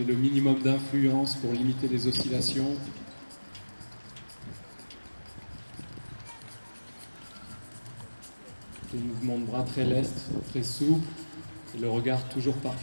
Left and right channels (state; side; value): inverted; both; correlation -1.00